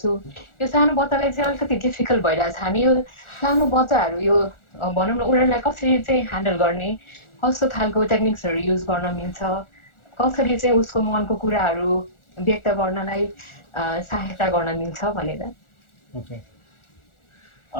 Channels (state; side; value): late; right; 1.4 ms